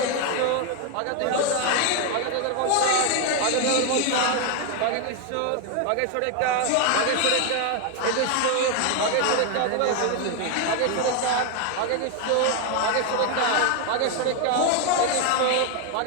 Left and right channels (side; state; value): both; different; correlation 0.01